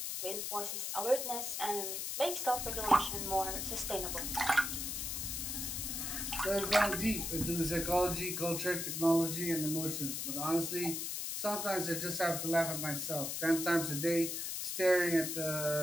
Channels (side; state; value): left; noise; hiss, 3 dB below the sound